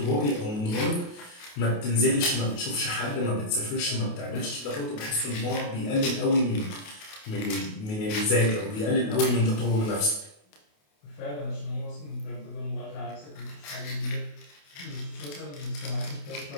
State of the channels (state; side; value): late; right; 28 ms